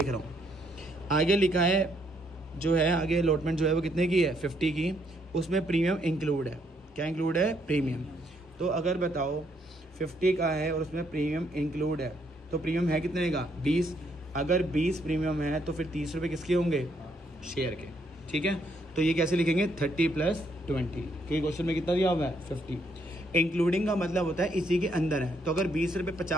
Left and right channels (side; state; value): both; normal; correlation 0.72